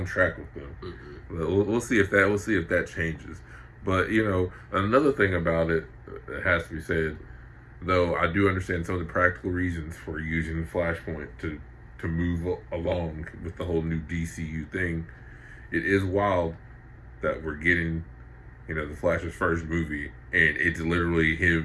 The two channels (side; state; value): both; identical; correlation 1.00